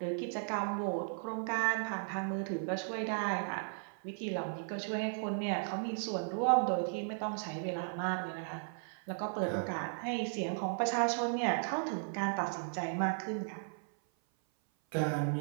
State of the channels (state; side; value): silent; left; 54 dB below the other